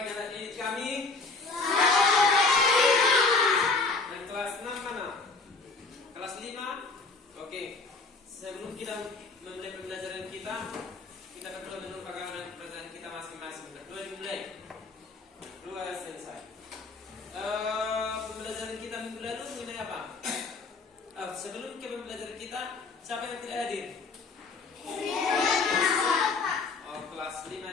anak didik kami. Yang kelas 6 mana? Kelas 5? Oke. Sebelum kita memulai pembelajaran kita berdua menumpahkan pembelajaran kita masing-masing. Berdua dimulai. Berdua selesai. Pembelajaran kita minggu lalu mengenai apa? Sebelum ke pembelajaran kita, siapa yang tidak hadir? Kelas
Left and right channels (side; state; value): right; quieter; 4.0 dB